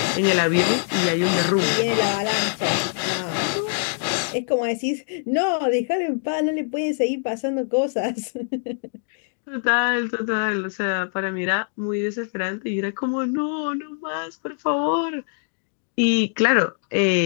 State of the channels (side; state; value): right; silent; digital silence